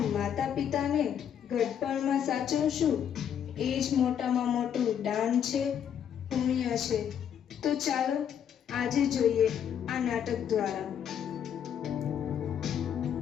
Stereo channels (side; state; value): right; quieter; 8.9 dB